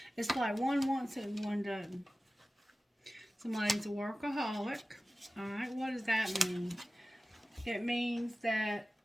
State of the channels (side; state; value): both; normal; correlation 0.96